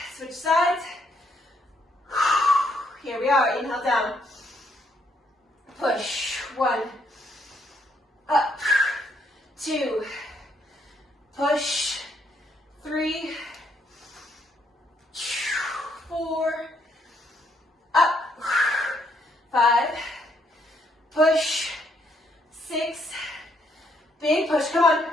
Switch sides. Here we are. Inhale down. Push. 1, up, 2, push, 3, 4, up, 5, push, 6, big push, come on,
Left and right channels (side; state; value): both; normal; correlation 0.72